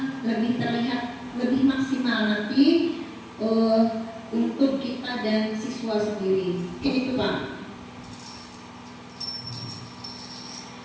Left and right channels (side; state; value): both; identical; correlation 1.00